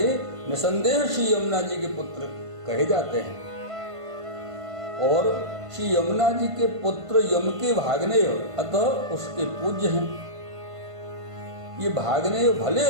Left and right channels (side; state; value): left; late; 1.5 ms